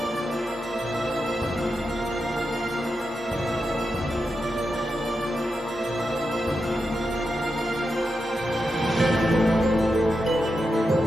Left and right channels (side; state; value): both; normal; correlation 0.87